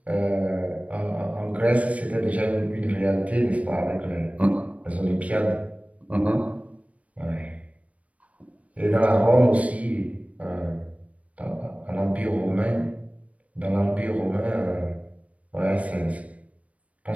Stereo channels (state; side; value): late; left; 0.066 ms